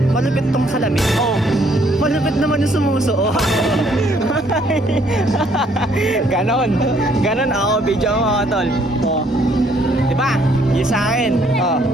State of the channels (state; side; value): normal; both; correlation 0.66